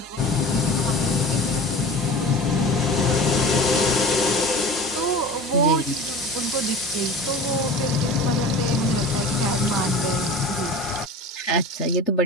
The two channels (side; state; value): both; normal; correlation 0.36